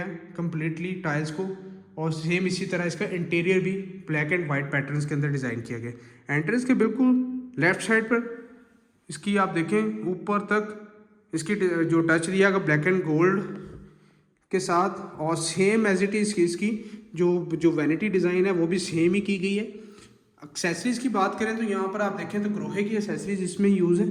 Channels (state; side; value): identical; both; correlation 1.00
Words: कम्प्लीटली टाइल्स को, और सेम इसी तरह इसका इंटीरियर भी ब्लैक एंड वाइट पैटर्न्स के अंदर डिज़ाइन किया गया। एंट्रेंस के बिल्कुल लेफ्ट साइड पर इसकी आप देखें ऊपर तक इसकी जो टच दिया गया ब्लैक एंड गोल्ड के साथ, और सेम एज इट इज़ इसकी जो वैनिटी डिज़ाइन है वो भी सेम ही की गई है। एक्सेसरीज की बात करें तो यहाँ पर आप देखें तो ग्रोहे की एक्सेसरीज इसमें यूज़ है।